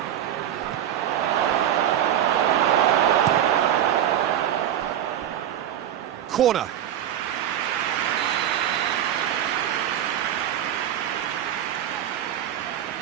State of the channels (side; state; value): left; quieter; 10.8 dB